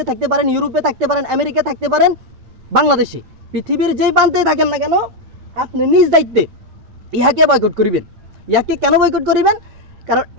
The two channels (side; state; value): left; late; 8.9 ms